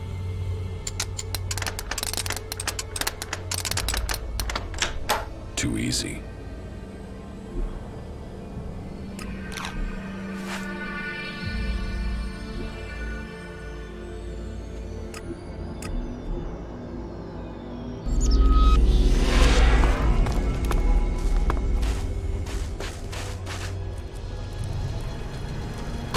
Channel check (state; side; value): identical; both; correlation 1.00